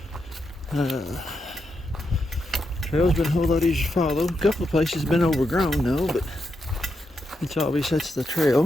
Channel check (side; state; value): both; normal; correlation 0.84